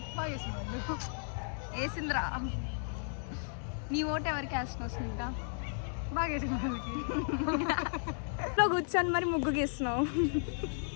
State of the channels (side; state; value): right; silent; 55 dB below the other